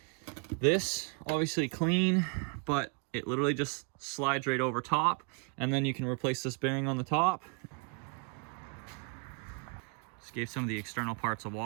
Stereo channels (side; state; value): left; quieter; 33.6 dB